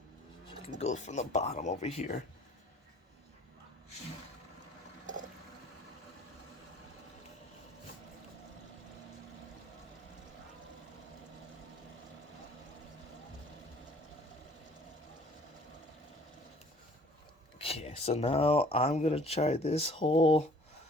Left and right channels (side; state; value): both; normal; correlation 0.54